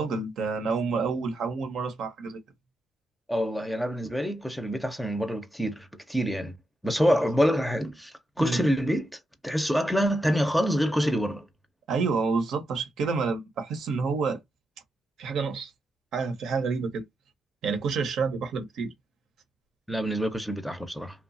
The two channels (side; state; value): both; normal; correlation 0.84